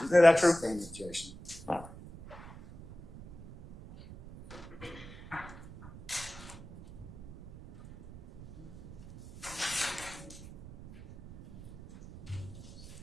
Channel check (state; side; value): noise; right; rumble, 16 dB below the sound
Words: Isn't that true? I sustain the objection.